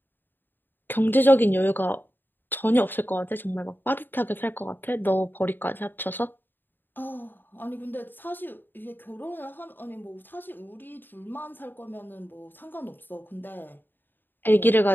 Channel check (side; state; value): right; late; 0.094 ms